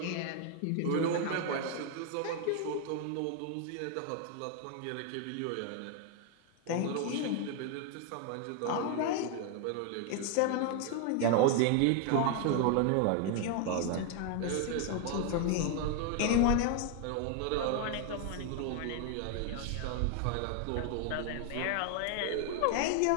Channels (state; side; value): different; both; correlation 0.01